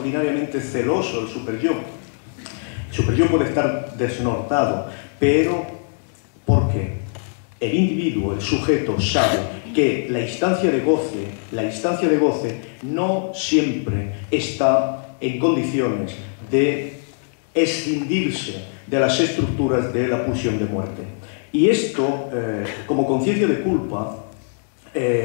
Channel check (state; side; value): silent; right; 64 dB below the other